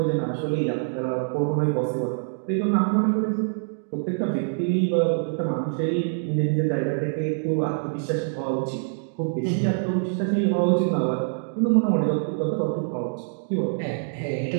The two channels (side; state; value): left; silent; digital silence